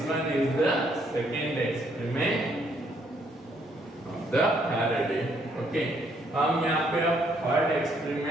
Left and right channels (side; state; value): both; normal; correlation 0.70